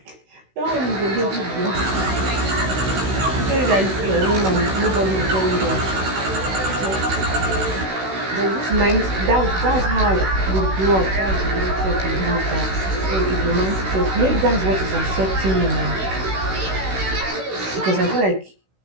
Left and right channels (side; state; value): left; late; 16 ms